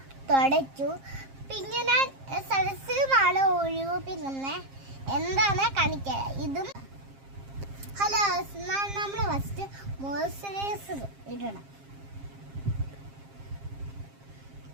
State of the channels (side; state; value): left; late; 7.5 ms